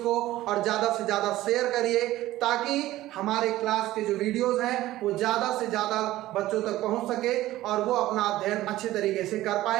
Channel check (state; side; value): quieter; left; 15.7 dB